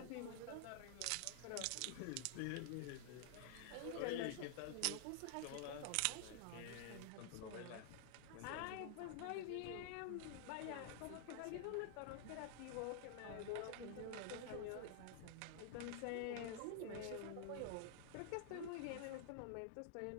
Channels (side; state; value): both; different; correlation 0.00